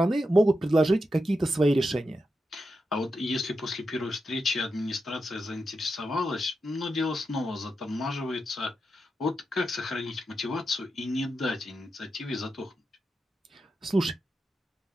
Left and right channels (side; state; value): both; normal; correlation 0.87